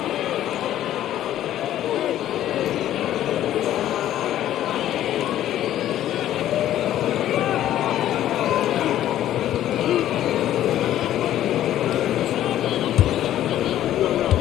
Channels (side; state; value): right; quieter; 12.4 dB